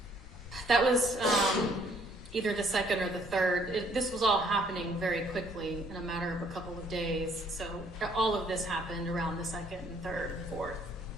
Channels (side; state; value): both; normal; correlation 0.64